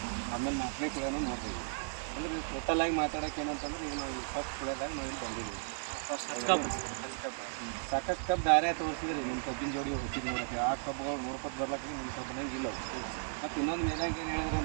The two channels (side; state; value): left; silent; digital silence